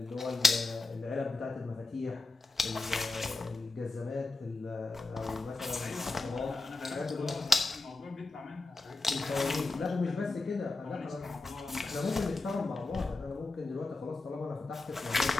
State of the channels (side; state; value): right; quieter; 3.4 dB